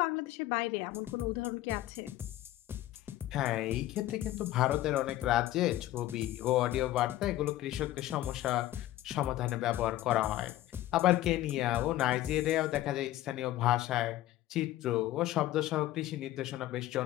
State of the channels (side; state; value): right; quieter; 14.7 dB